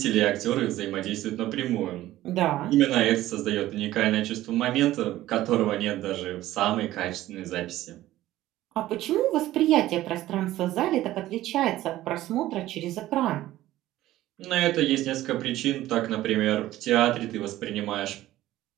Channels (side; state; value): left; quieter; 15.1 dB